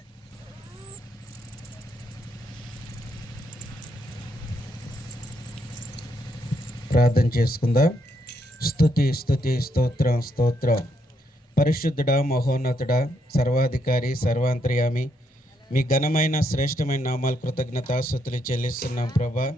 ప్రార్థన చేసుకుందాం. స్తుతి స్తుతి స్తోత్రం స్తోత్రం. పరిశుద్ధుడా, మహోన్నతుడా, సర్వాధికారి, సర్వాంతర్యామి, మీ ఘనమైన శ్రేష్టమైన నామాలు కృతజ్ఞతాస్తుతులు చెల్లిస్తున్నాం ప్రభా.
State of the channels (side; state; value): both; normal; correlation 0.76